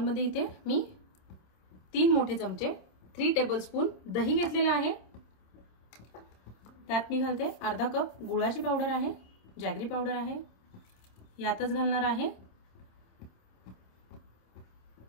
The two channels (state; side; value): late; right; 26 ms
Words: इथे मी 3 मोठे चमचे 3 टेबलस्पून दही घेतलेला आहे। त्यात मी घालते अर्धा कप गुळाची पावडर आहे, जॅगरी पावडर आहे। यातच घालणार आहे